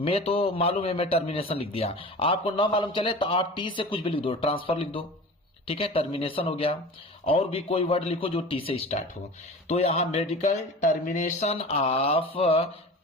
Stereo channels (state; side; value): normal; both; correlation 0.36